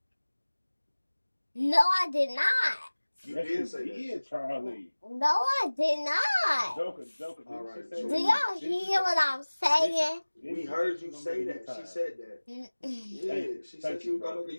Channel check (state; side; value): inverted; both; correlation -1.00